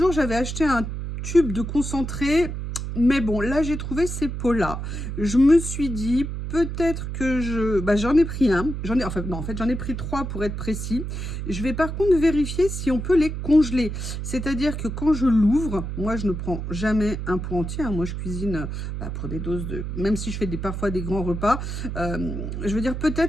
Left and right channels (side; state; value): right; noise; hum, 5 dB below the sound